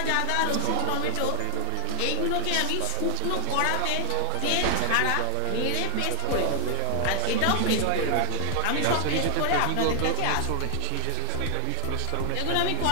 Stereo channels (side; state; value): both; different; correlation 0.00